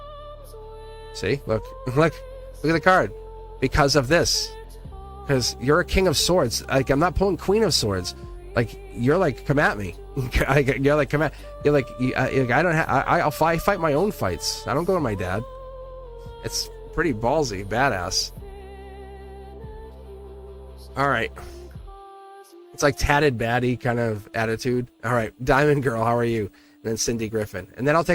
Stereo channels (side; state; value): both; identical; correlation 1.00